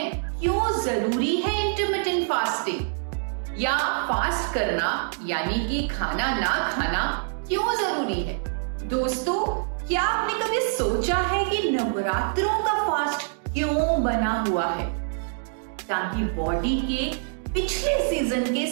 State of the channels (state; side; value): silent; left; digital silence